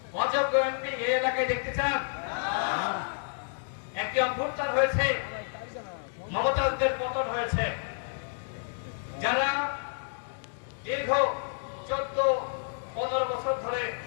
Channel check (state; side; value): silent; right; digital silence